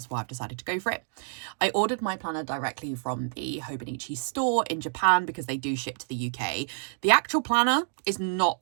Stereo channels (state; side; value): silent; left; digital silence